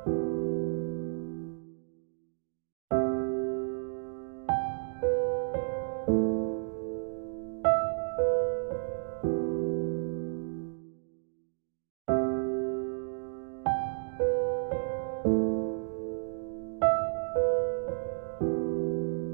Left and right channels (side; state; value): left; silent; digital silence